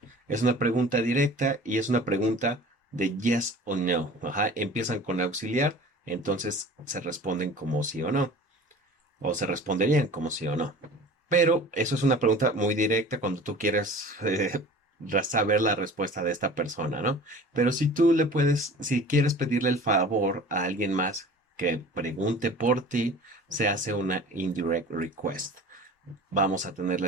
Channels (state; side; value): normal; both; correlation 0.42